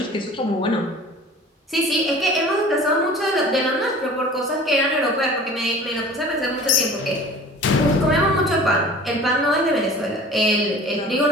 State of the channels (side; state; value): both; normal; correlation 0.43